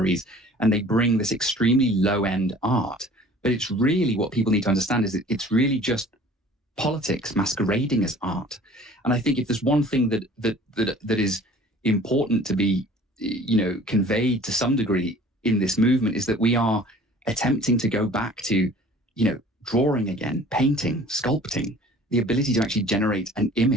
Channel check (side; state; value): both; normal; correlation 0.49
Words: and they bring this extremely low-end art. But it's really, what people need to understand is that it's really just politics masquerading as art. And I think if there's one thing that is important to be, conveyed to some degree in this movement, is that we are attempting to go back to, drawing again, painting, sculpting, the ability to actually generate an